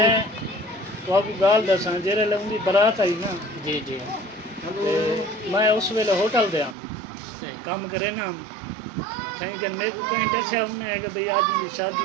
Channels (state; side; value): drops out; left; at 6.8 s